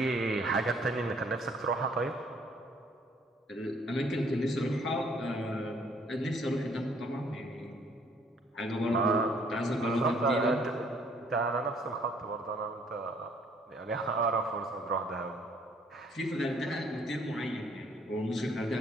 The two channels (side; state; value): both; normal; correlation 0.62